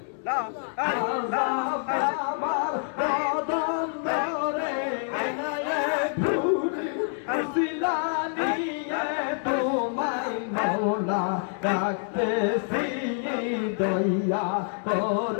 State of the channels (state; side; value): silent; right; 60 dB below the other